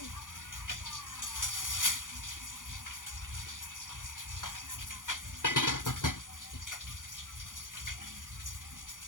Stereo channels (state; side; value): late; right; 0.88 ms